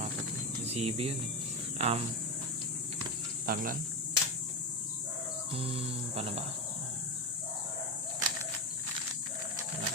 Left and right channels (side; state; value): both; normal; correlation 0.15